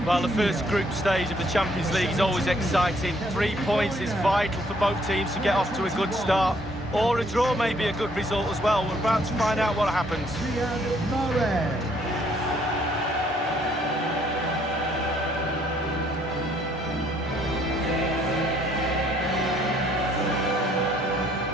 Well, the first group stage of the Champions League is always exciting. 3 points is vital for both teams to get off to a good start. Or a draw may be a good result as well. We're about to find out what happens.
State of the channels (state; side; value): normal; both; correlation 0.66